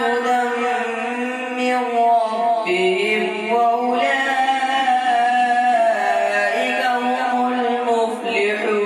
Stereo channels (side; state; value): both; identical; correlation 1.00